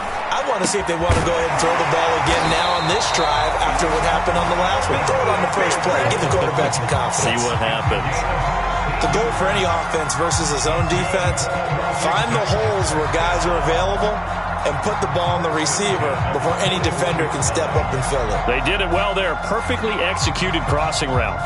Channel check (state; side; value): identical; both; correlation 1.00